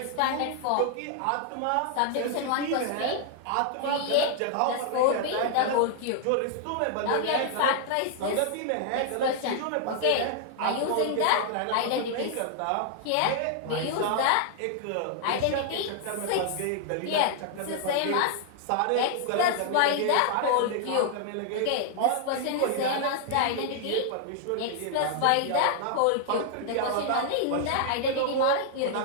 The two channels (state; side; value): different; both; correlation -0.01